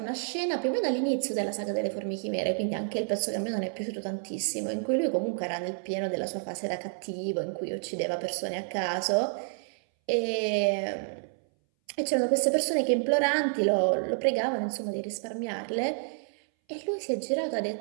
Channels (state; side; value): silent; left; 58 dB below the other